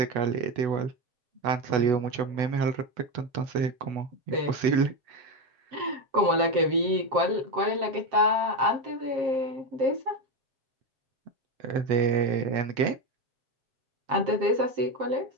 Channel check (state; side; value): late; left; 7.6 ms